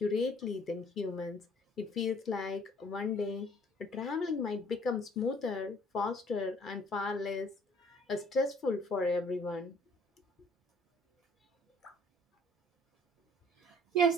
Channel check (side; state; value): both; normal; correlation 0.57